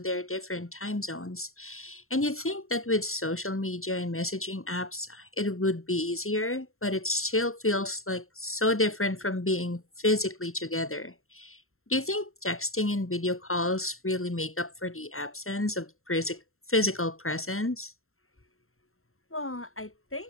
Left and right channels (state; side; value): late; right; 0.62 ms